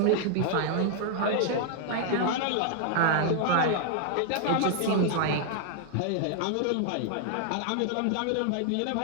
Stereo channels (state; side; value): different; both; correlation 0.00